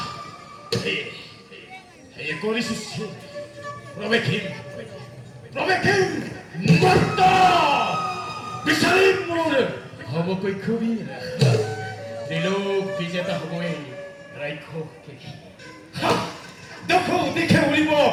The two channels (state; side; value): identical; both; correlation 1.00